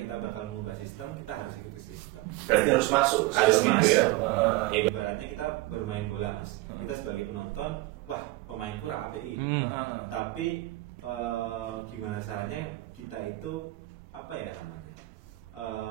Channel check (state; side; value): quieter; left; 19.5 dB